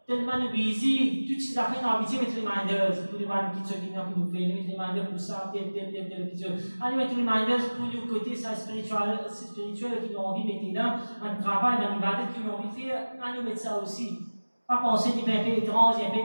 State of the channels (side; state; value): both; inverted; correlation -1.00